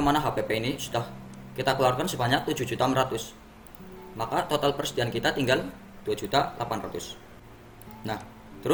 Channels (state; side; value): identical; both; correlation 1.00